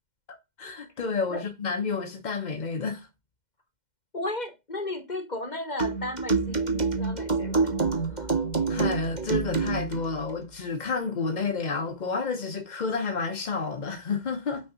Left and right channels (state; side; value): late; right; 2.1 ms